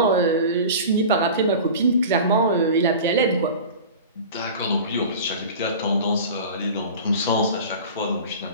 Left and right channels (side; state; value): both; inverted; correlation -0.36